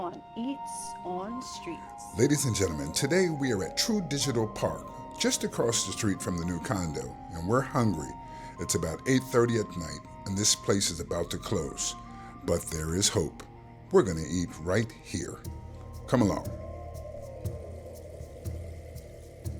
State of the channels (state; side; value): identical; both; correlation 1.00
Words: Eats on Streets. Ladies and gentlemen, today we are at True Digital Park, just across the street from the new condo, and we're hungry. It's about 8:30 at night, and this place is about to close. But there is hope. We're going to eat right here. Come along.